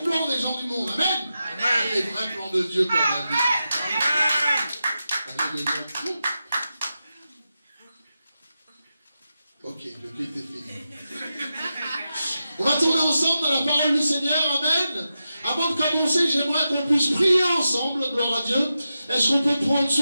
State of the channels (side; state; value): both; inverted; correlation -0.90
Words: plans des gens du monde. Amen. Amen. Les vrais plans de Dieu pour ma vie. Amen. Alléluia. Ok, le culte est fini. On va tourner ensemble dans la parole du Seigneur. Amen. Avant de commencer, j'aimerais qu'on puisse prier ensemble, gloire à Dieu. Est-ce qu'on peut prendre